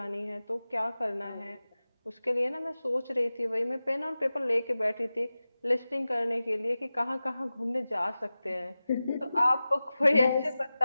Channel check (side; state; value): both; inverted; correlation -0.96